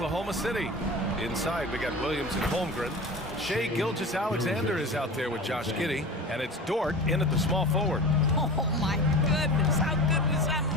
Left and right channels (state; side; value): normal; both; correlation 0.33